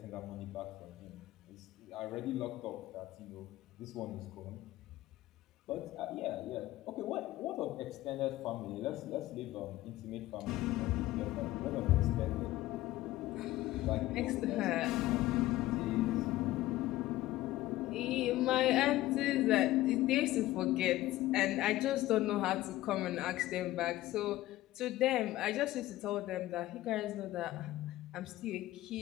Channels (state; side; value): quieter; right; 16.2 dB